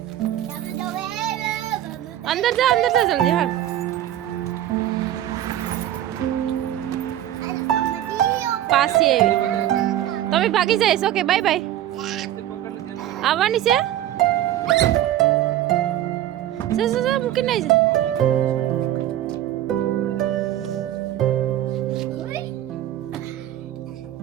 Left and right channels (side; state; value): left; quieter; 12.5 dB